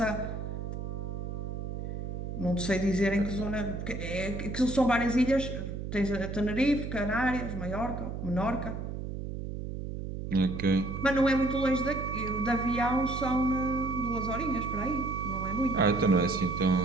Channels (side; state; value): right; noise; hum, 6 dB below the sound